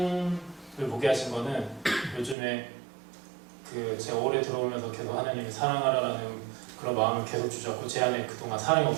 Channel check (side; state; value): left; drops out; at 2.4 s